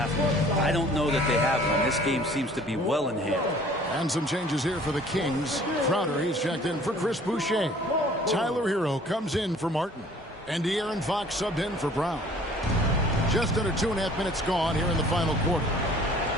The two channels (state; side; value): normal; both; correlation 0.53